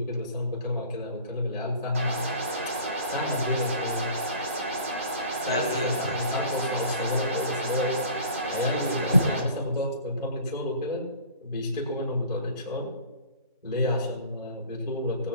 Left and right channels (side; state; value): both; inverted; correlation -0.45